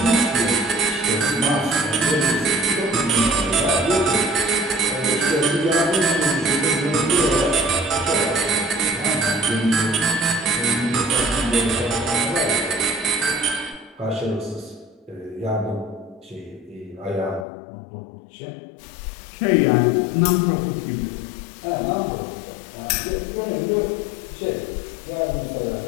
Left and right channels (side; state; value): right; drops out; at 17.4 s